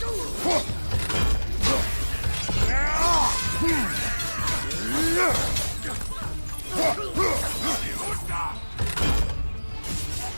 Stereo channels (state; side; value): inverted; both; correlation -1.00